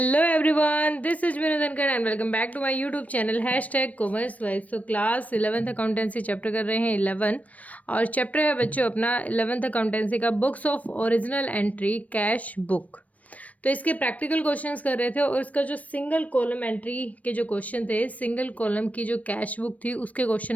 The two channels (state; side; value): late; right; 0.069 ms